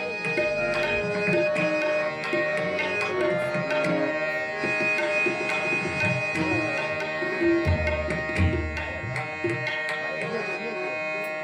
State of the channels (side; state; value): both; identical; correlation 1.00